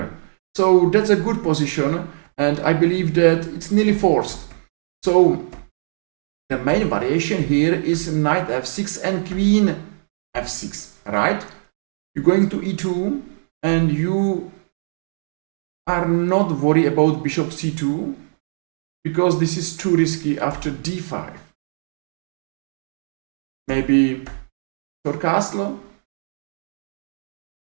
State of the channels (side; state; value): left; silent; digital silence